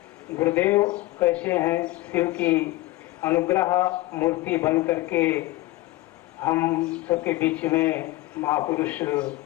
गुरुदेव कैसे हैं, शिव की अनुग्रह मूर्ति बन करके हम सबके बीच में महापुरुष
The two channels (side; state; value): right; quieter; 18.6 dB